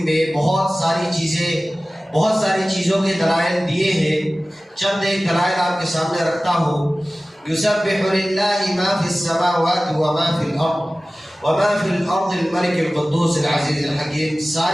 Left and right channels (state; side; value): normal; both; correlation 0.97